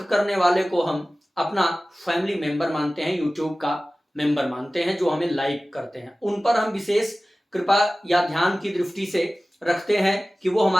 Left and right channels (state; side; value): normal; both; correlation 0.97